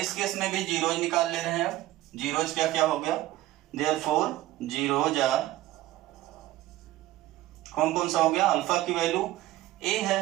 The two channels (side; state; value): left; quieter; 16.0 dB